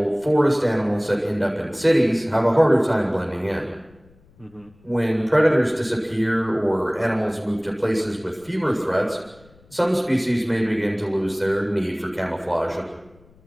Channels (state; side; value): noise; left; rumble, 28 dB below the sound